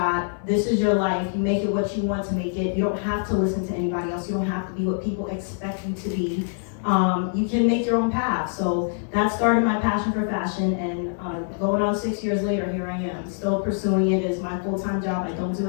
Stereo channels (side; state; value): right; silent; digital silence